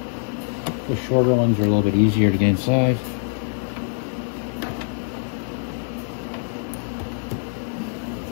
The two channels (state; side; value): silent; right; 63 dB below the other